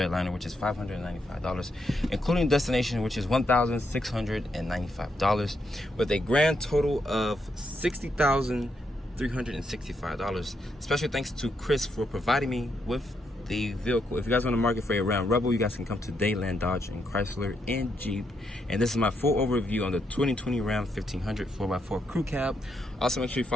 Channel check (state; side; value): normal; both; correlation 0.79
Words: liner, which is $595, including destination, which is $1,695, with a grand total of $60,365. Special thanks to Chris for providing me with the vehicle. If you guys want to market for a Ram Rebel, you guys can come to Dadeland Dodge and Chrysler and Jeep. And this is my full overview on the 2020 Ram 1500 4x4 Crew Cab. Also, make sure you